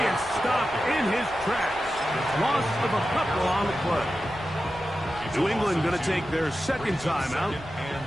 is stopped in his tracks. Loss of a couple on the play. New England going to take their 2nd timeout,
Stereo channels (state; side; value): noise; right; rumble, 20 dB below the sound